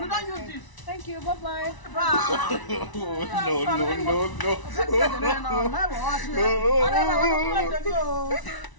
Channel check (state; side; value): late; right; 1.0 ms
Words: don't use this. Thank you. Bye-bye.